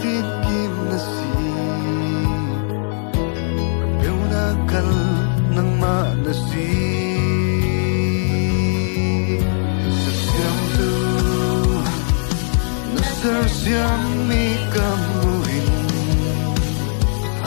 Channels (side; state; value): right; silent; 60 dB below the other